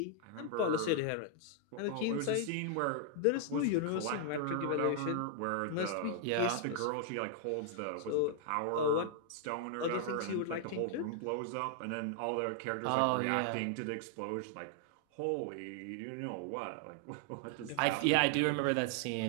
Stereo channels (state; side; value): different; both; correlation 0.00